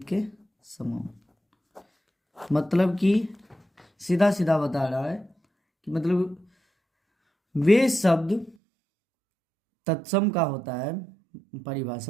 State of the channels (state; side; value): drops out; left; at 8.6 s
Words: के समान। मतलब कि सीधा सीधा बता रहा है कि मतलब वे शब्द, तत्सम का होता है